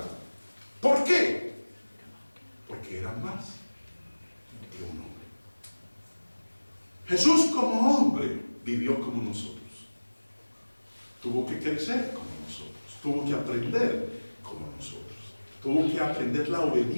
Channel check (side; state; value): both; inverted; correlation -1.00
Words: ¿Por qué? Porque era más que un hombre. Jesús como hombre vivió como nosotros. Tuvo que crecer como nosotros. Tuvo que aprender como nosotros. Tuvo que aprender la